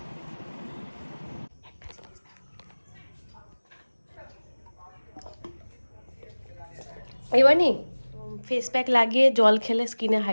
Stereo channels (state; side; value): inverted; both; correlation -1.00